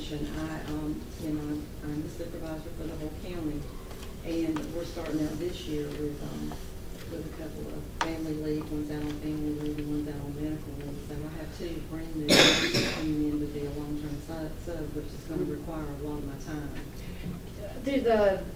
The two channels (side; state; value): both; identical; correlation 1.00